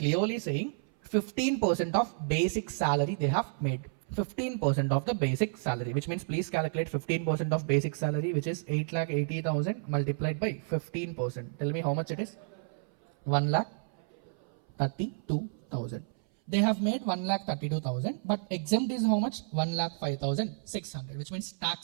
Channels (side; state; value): left; silent; 57 dB below the other